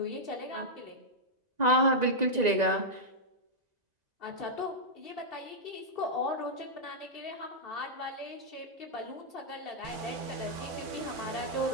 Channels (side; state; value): left; late; 1.9 ms